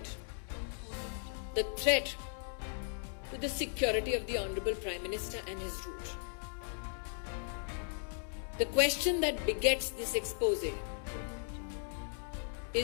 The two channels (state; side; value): silent; right; 53 dB below the other